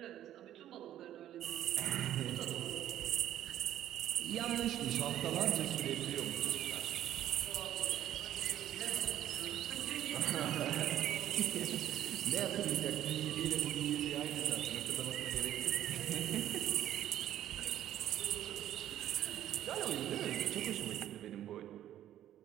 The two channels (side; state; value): left; quieter; 12.0 dB